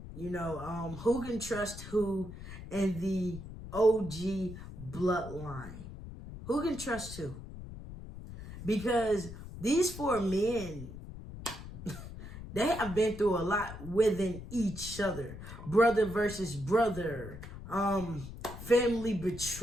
who can trust who in the OG bloodline. Who can trust who? Because these four men, they have been through a lot within each other. Brother versus brother, family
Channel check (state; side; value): noise; left; rumble, 12 dB below the sound